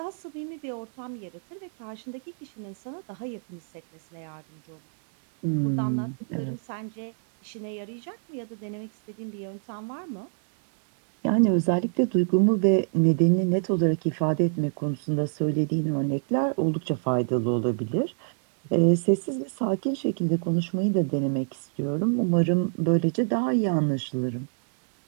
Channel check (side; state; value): left; silent; digital silence